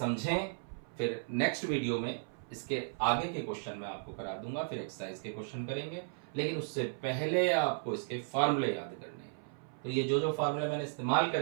फिर नेक्स्ट वीडियो में इसके आगे के क्वेश्चन मैं आपको करा दूंगा, फिर एक्सरसाइज के क्वेश्चन करेंगे। लेकिन उससे पहले आपको इसके फार्मूले याद करने हैं। तो ये जो फार्मूले मैंने इस्तेमाल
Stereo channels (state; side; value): silent; left; 54 dB below the other